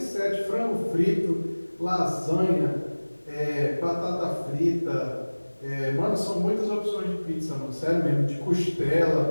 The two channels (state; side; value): inverted; both; correlation -1.00